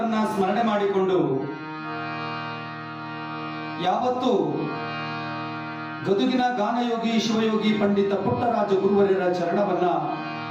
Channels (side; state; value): both; identical; correlation 1.00